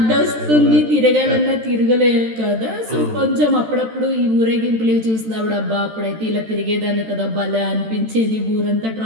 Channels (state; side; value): late; left; 13 ms